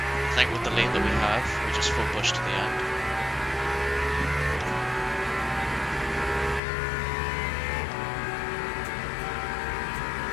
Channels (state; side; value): drops out; right; at 6.6 s